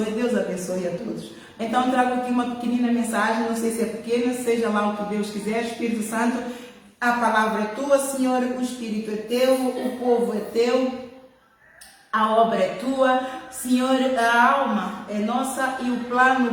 Deus abençoe a todos. Então, trago aqui uma pequenina mensagem, não sei se é pequena, seja lá o que Deus quiser. Espírito Santo, a palavra é tua, Senhor, o Espírito é teu, o povo é teu, a obra é tua, Senhor, a alma é nossa e o plano,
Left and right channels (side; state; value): both; identical; correlation 1.00